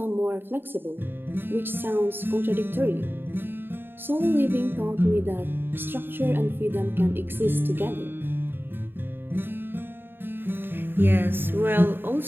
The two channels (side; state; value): left; late; 0.099 ms